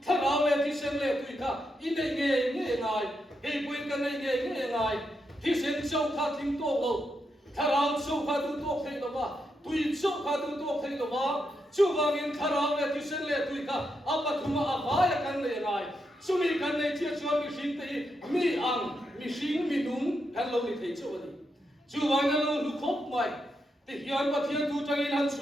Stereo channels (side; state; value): both; normal; correlation 0.83